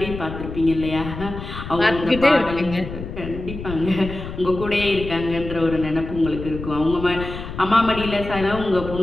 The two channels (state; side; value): noise; left; rumble, 9 dB below the sound